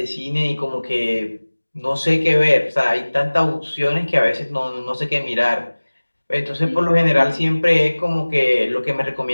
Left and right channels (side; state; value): both; inverted; correlation -1.00